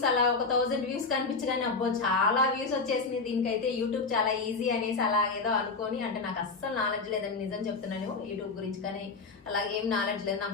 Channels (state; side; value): quieter; right; 4.2 dB